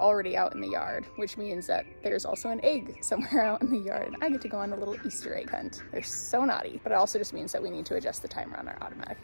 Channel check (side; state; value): both; inverted; correlation -1.00